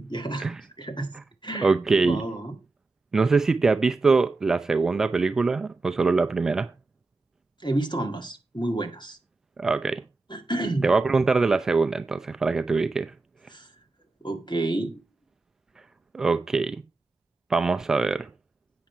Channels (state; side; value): quieter; left; 3.6 dB